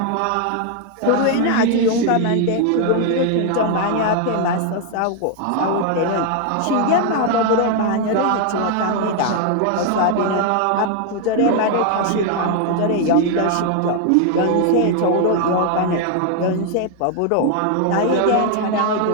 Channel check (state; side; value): different; both; correlation 0.01